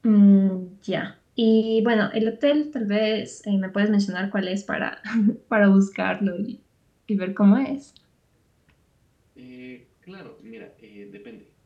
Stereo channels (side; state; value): both; identical; correlation 1.00